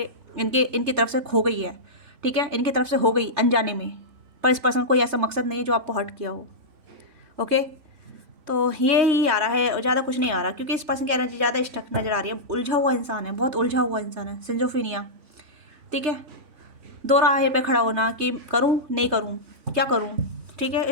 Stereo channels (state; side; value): late; left; 3.5 ms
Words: इनकी तरफ से खो गई है, ठीक है, इनकी तरफ से हो गई अनजाने में। पर इस पर्सन को ऐसा मकसद नहीं है जो आपको हर्ट किया हो। ओके, तो ये ही आ रहा है और ज़्यादा कुछ नहीं आ रहा, क्योंकि इस पर्सन की एनर्जी ज़्यादा स्टक नज़र आ रही है। उलझा हुआ इंसान है, बहुत उलझा हुआ इंसान है, सिंजोफीनिया, ठीक है। दो राहे पे खड़ा होना कि करूं नहीं करूं, क्या करूं, ठीक है,